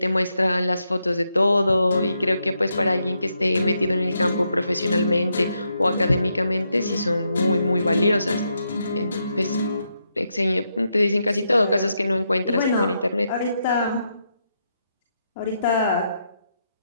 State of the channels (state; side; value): inverted; both; correlation -0.81